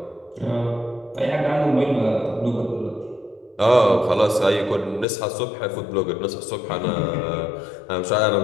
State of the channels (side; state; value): right; drops out; at 5.1 s